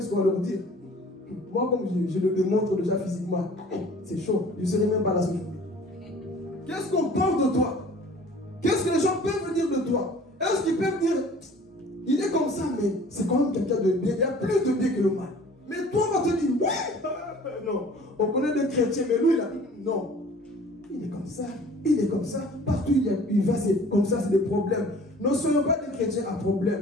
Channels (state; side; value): normal; both; correlation 0.48